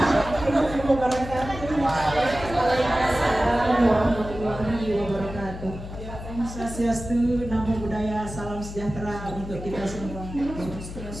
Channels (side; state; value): left; noise; hum, 10 dB below the sound